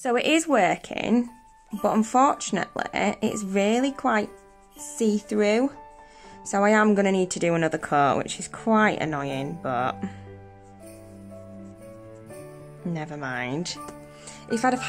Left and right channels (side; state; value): both; identical; correlation 1.00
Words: it is working, but unfortunately it's really quite see-through. So I am going to need to do another coat, which is quite annoying, but never mind. If I'd have